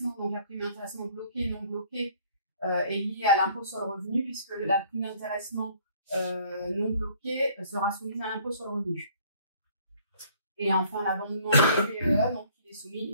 donc la prime d'intéressement bloquée et non bloquée, est liée à l'impôt sur le revenu, puisque la prime d'intéressement non bloquée sera soumise à l'impôt sur le revenu. Et enfin, l'abondement PPE, donc il est soumis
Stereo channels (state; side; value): inverted; both; correlation -0.58